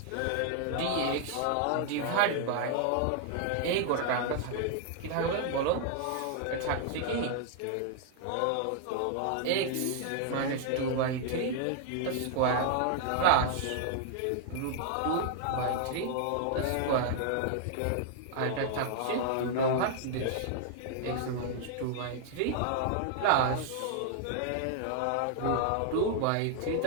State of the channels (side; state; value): both; different; correlation 0.00